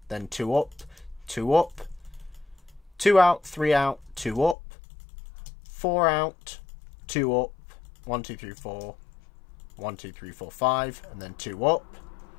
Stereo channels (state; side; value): drops out; right; at 4.5 s